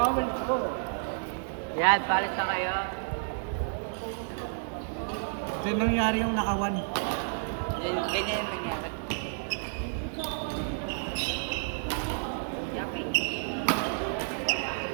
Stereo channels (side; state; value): left; silent; digital silence